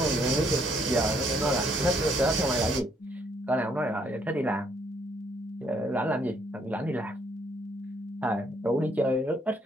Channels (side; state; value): both; normal; correlation 0.68